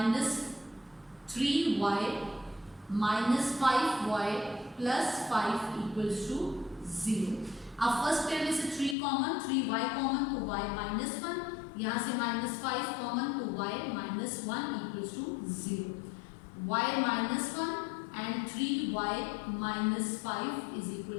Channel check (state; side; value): drops out; right; at 9.0 s